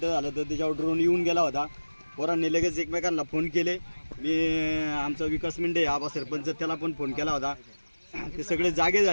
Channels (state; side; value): inverted; both; correlation -1.00